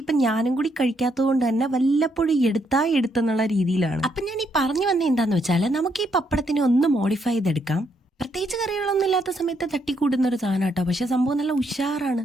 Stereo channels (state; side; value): normal; both; correlation 0.75